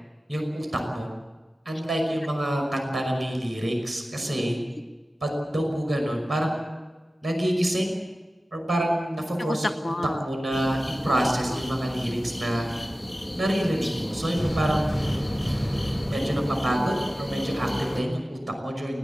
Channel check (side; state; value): both; normal; correlation 0.96